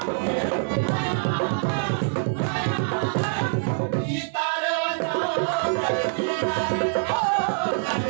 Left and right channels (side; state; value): left; silent; digital silence